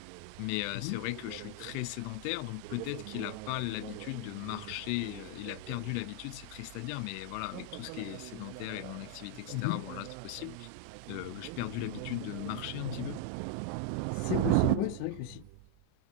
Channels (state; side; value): different; both; correlation 0.00